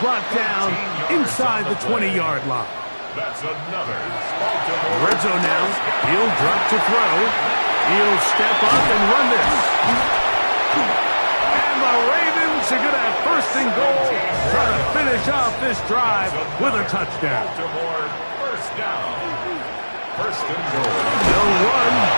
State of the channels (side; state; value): both; inverted; correlation -1.00